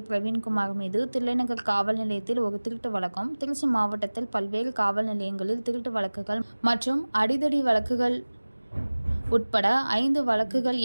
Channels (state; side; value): inverted; both; correlation -1.00